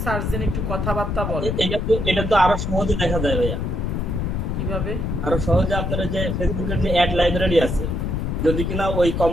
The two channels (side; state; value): left; noise; rumble, 1 dB below the sound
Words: সার্চ দেন, একটু কথাবার্তা বলেন। এটা তো আরো সহজে দেখা যায় ভাইয়া। কিভাবে? আরো সহজে আপনারা যে ফেসবুকের যে অ্যাড লাইব্রেরি আছে, যদি কিনা